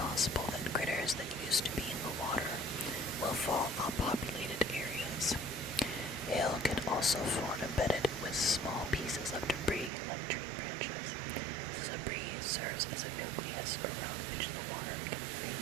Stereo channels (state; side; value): drops out; left; at 9.9 s